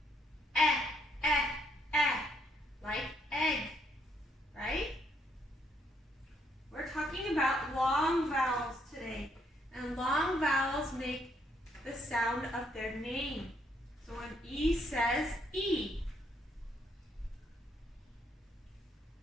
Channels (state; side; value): normal; both; correlation 0.72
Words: Like egg, right? We're talking about long vowels today, and long vowels make the sound of their name. So an E says E.